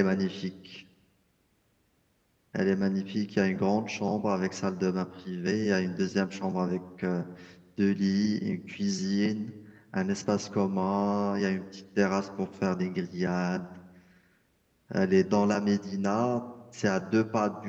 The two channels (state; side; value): identical; both; correlation 1.00